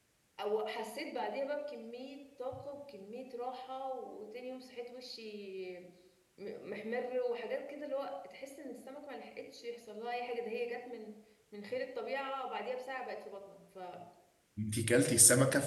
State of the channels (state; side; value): identical; both; correlation 1.00